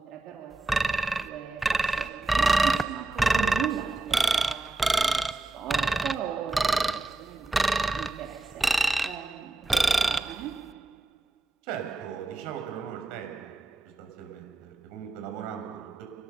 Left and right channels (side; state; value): left; quieter; 3.1 dB